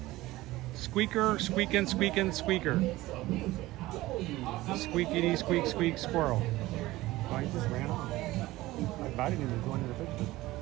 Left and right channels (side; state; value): left; quieter; 18.0 dB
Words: Squeaker, squeaking, squeaking, squeaker. Squeakity, squeak, squeak, squirrel. Oh, he just ran off. I invited him to join in the picture.